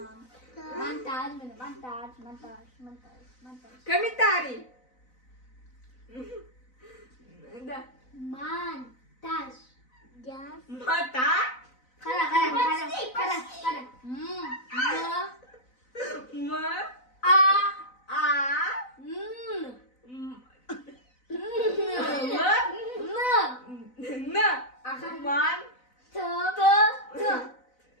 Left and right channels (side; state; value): right; late; 4.0 ms